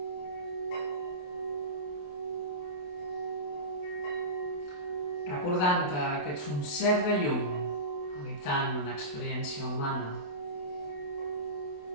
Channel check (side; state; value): right; late; 28 ms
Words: Recordant-te que ets un ser de llum habitant una experiència humana.